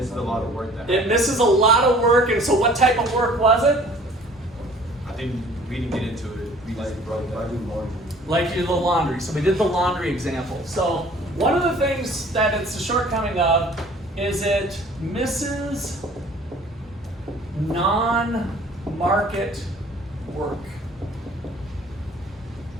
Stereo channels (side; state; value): both; normal; correlation 0.52